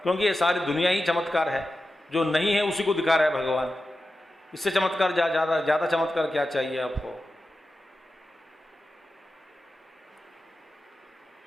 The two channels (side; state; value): both; normal; correlation 0.92